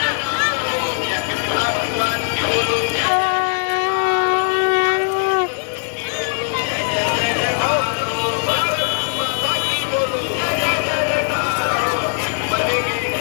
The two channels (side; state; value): right; silent; digital silence